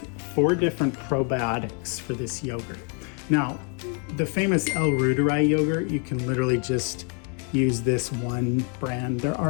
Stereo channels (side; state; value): right; quieter; 37.9 dB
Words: 4 different probiotics for this yogurt. Now, the famous 𝗟𝗏𝗄𝗏 yogurt, you can literally just use this one brand. There